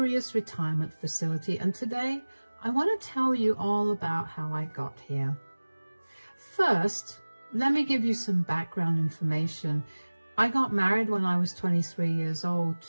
retirement facility, and today I want to tell you all about how I got here. First, let me give you some background information. I got married when I was 23 years old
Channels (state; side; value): inverted; both; correlation -1.00